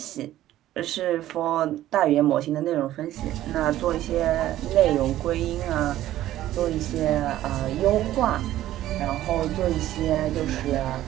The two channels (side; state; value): left; quieter; 13.8 dB